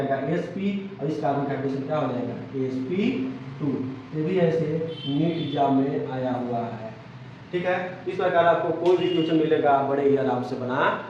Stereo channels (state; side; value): identical; both; correlation 1.00